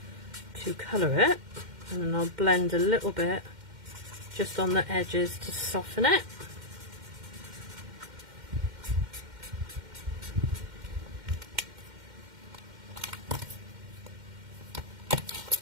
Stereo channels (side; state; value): left; late; 2.1 ms